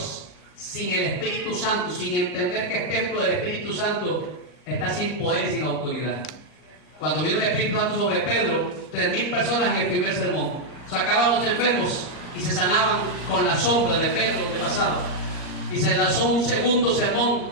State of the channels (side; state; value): right; late; 39 ms